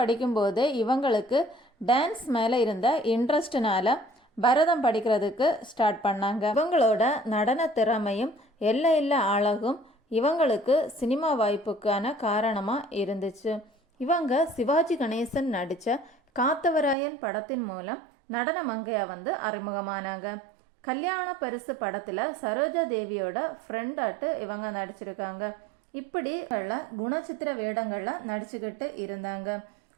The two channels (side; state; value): left; drops out; at 16.9 s